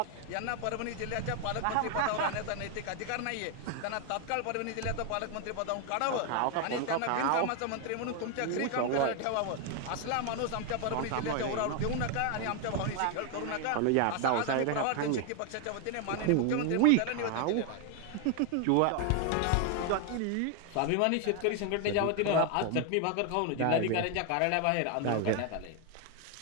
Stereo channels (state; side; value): different; both; correlation 0.01